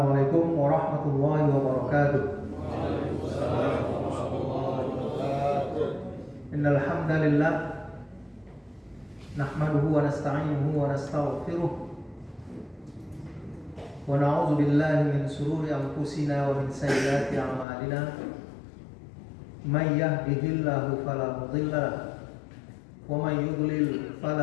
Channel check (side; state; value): right; drops out; at 17.7 s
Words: warahmatullahi wabarakatuh. Innal hamdalillah nahmaduhu wa nasta'inuhu wa nastaghfiruh wa na'udzu billahi min shururi anfusina wa min sayyiati a'malina. May yahdihillahu fala mudilla lahu wa may yudlil